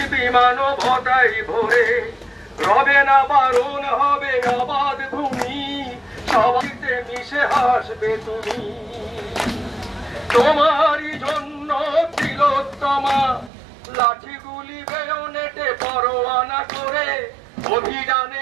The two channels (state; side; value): drops out; left; at 13.5 s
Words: মানবতাই ভরে। রবে না বারণ হবে আবাদ ভূমি সবাইতে মিশে হাসবে তুমি। তোমারই জন্য তিলোত্তমা লাঠিগুলি বেয়নেটে পরোয়ানা করে অভিযানে